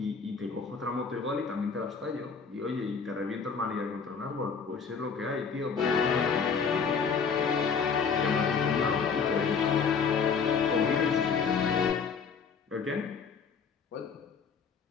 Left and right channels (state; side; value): quieter; right; 5.8 dB